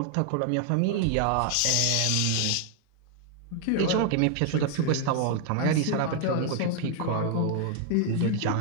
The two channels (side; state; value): both; different; correlation 0.00